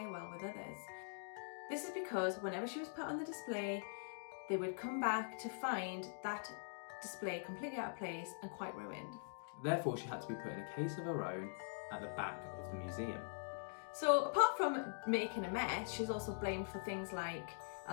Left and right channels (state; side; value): silent; right; digital silence